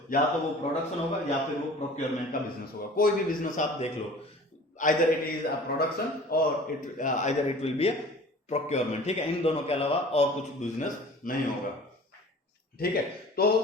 या तो वो प्रोडक्शन होगा या फिर वो प्रोक्योरमेंट का बिजनेस होगा. कोई भी बिजनेस आप देख लो, either it is a production और either it will be a procurement. ठीक है, इन दोनों के अलावा और कुछ बिजनेस नहीं होगा. ठीक है,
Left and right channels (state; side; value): normal; both; correlation 0.44